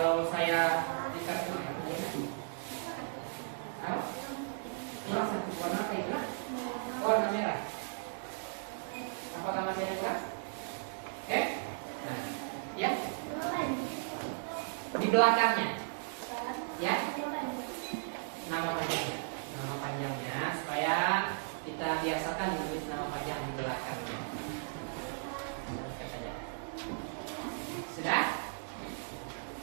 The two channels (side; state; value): left; silent; digital silence